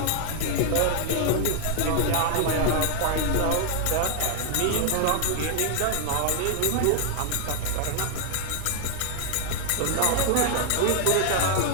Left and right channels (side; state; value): both; different; correlation 0.00